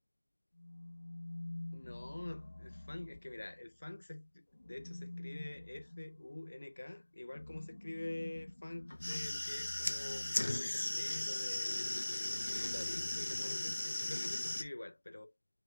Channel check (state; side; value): inverted; both; correlation -1.00